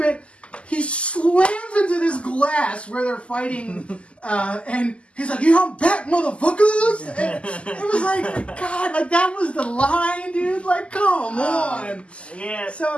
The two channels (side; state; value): right; late; 0.056 ms